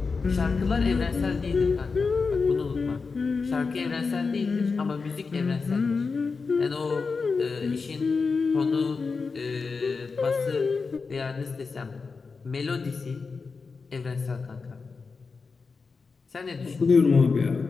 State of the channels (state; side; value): quieter; right; 4.7 dB